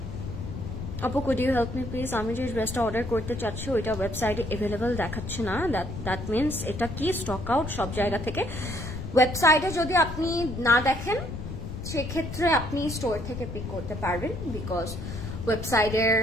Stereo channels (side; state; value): left; noise; rumble, 7 dB below the sound